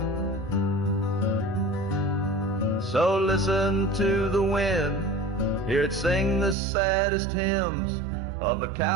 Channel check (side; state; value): left; drops out; at 6.6 s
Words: So listen to the wind, hear it sing the saddest hymns of a